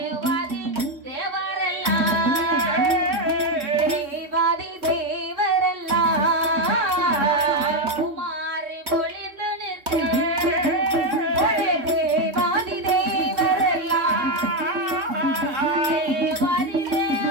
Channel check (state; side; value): late; left; 3.6 ms